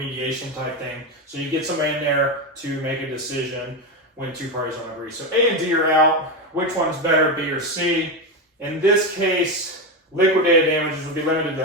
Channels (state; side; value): normal; both; correlation 0.13